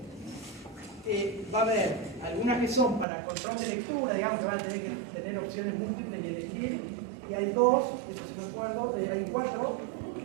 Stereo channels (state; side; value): drops out; left; at 3.1 s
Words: Va a haber algunas que son para control de lectura, digamos que van a tener que tener opciones múltiples y elegir. Y hay 2, eso sí me acuerdo, hay 4 o